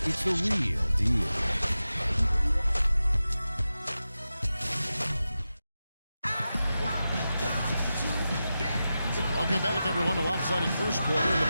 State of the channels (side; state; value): both; inverted; correlation -0.92